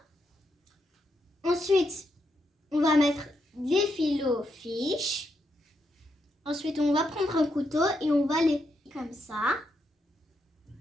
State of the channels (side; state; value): both; normal; correlation 0.81